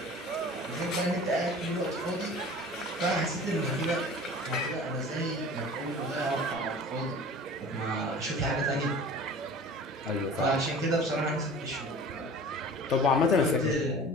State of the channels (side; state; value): both; normal; correlation 0.41